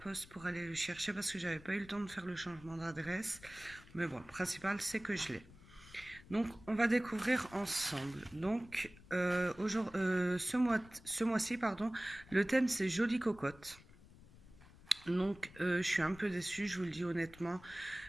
pour aller le chercher parce que j'avais pas eu le temps de faire le changement d'adresse. Mais bon, le principal c'est que je l'ai. Donc, on va découvrir ensemble. Donc, ce mois-ci, pardon, le thème c'est Jolie Cocotte. Donc, je suis un peu déçue, je vous le dis honnêtement.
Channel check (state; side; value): noise; left; rumble, 21 dB below the sound